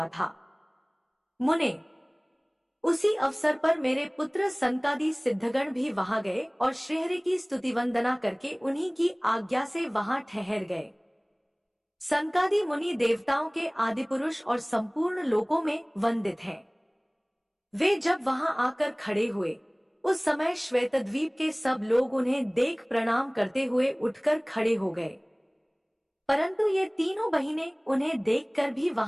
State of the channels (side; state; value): both; identical; correlation 1.00